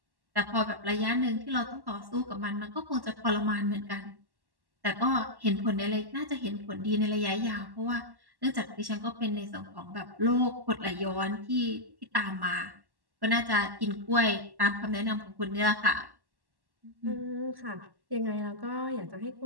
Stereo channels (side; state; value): left; late; 1.1 ms